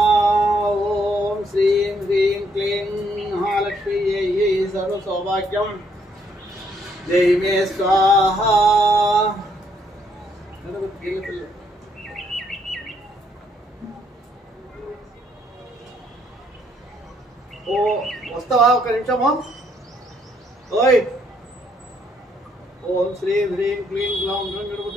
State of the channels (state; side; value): normal; both; correlation 0.70